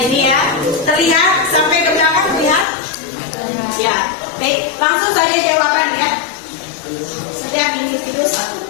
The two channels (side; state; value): right; drops out; at 2.7 s